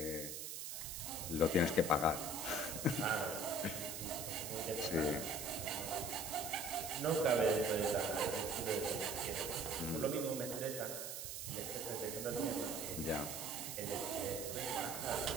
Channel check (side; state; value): right; noise; hiss, 6 dB below the sound